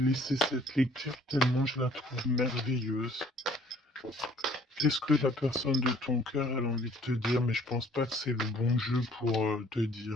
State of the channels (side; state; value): both; normal; correlation 0.57